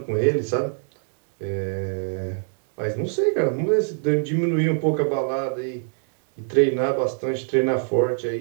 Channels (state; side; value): silent; left; digital silence